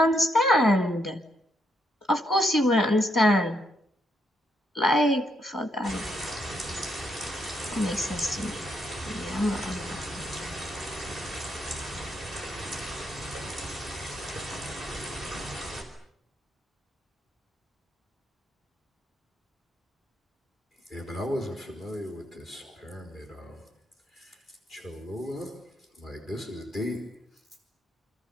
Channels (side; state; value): both; normal; correlation 0.77